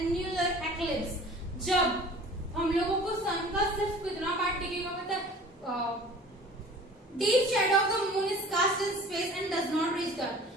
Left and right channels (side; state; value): both; normal; correlation 0.45